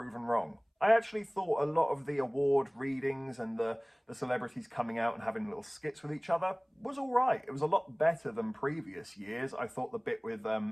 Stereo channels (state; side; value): identical; both; correlation 1.00